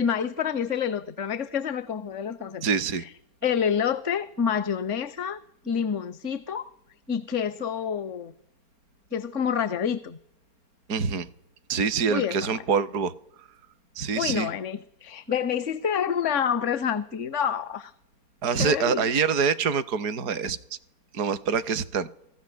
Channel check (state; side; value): late; left; 4.3 ms